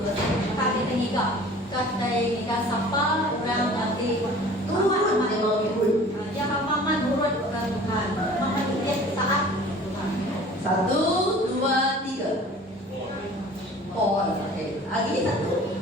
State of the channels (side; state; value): both; normal; correlation 0.46